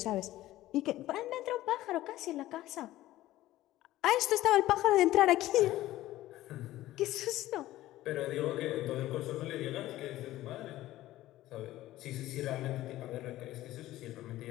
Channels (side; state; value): right; quieter; 15.5 dB